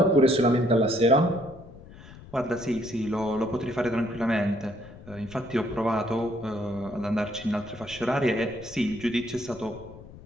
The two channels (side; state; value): left; noise; rumble, 18 dB below the sound